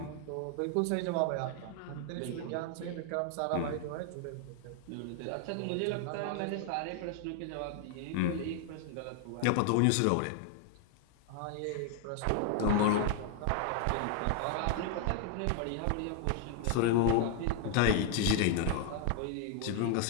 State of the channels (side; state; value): both; different; correlation 0.00